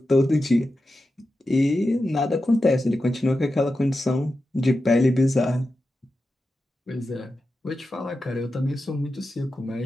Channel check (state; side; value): normal; both; correlation 0.91